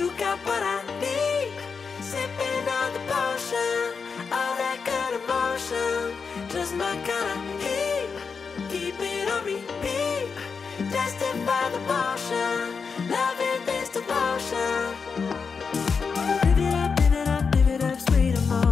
got what I need. Sipping on the potion, all that good emotion, just my kind of heat. Keep it on repeat, destined by the motion, loving this devotion. Live it up, sweet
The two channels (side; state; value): right; quieter; 5.5 dB